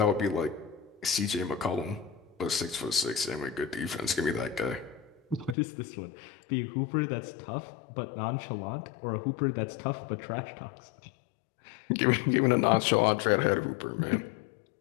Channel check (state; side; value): drops out; right; at 5.6 s